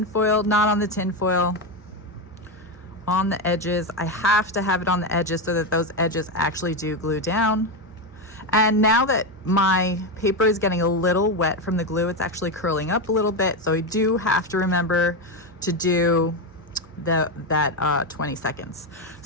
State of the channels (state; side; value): normal; both; correlation 0.11